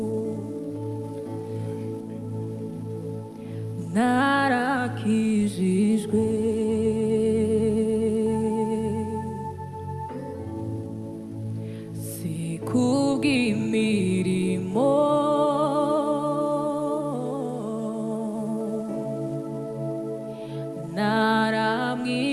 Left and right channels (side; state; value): both; identical; correlation 1.00